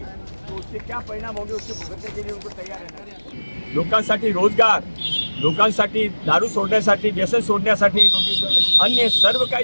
तो उसके क्या परिणाम होंगे उसके भुगतने के लिए उनको तैयार रहना। लोकांसाठी रोजगार, लोकांसाठी दारू सोडण्यासाठी, व्यसन सोडण्यासाठी अन्य सर्व काही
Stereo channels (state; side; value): inverted; both; correlation -1.00